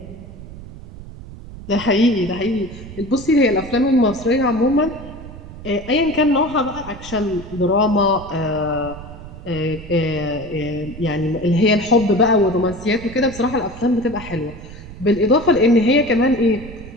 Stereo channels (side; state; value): right; noise; rumble, 14 dB below the sound